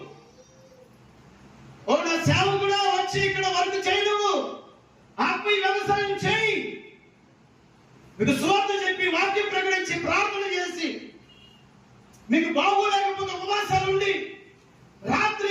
ఓ నా సేవకుడా, వచ్చి ఇక్కడ వర్క్ చేయి, నువ్వు ఆత్మీయ వ్యవసాయం చేయి. మీకు సువార్త చెప్పి, వాక్యం ప్రకటించి, ప్రార్థన చేసి, మీకు బాగోలేకపోతే ఉపవాసాలు ఉండి,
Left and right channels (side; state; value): both; identical; correlation 1.00